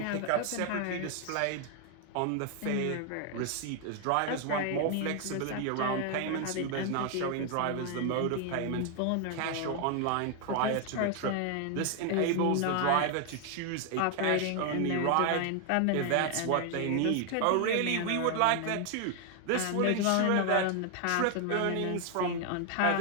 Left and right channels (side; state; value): both; different; correlation 0.01